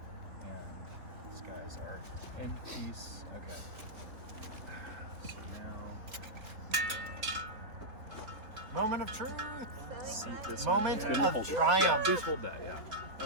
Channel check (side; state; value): left; late; 3.9 ms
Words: and these guys are end piece. Okay. So now. Moment of truth. Seat this Moment on. of Hold it. triumph. Yeah, please hold that, yeah.